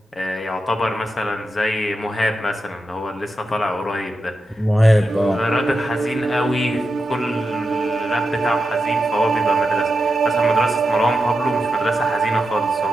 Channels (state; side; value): normal; both; correlation 0.89